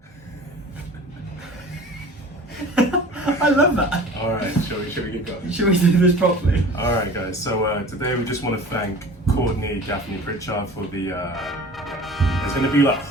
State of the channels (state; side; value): normal; both; correlation 0.41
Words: I love that. All right, shall we get going? Should we do this properly? All right, guys. So today we just want to thank Courtney, Gaffney, Pritchard for the. There's going to be like